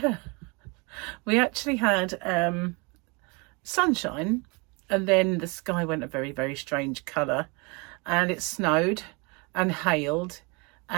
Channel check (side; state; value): left; quieter; 29.7 dB